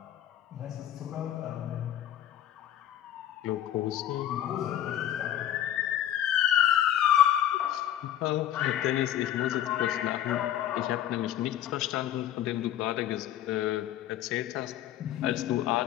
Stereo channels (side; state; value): right; quieter; 11.8 dB